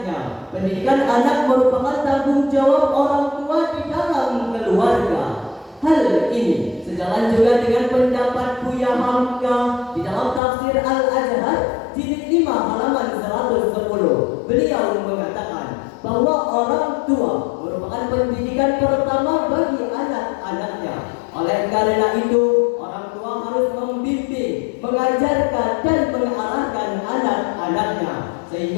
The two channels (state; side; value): drops out; right; at 10.4 s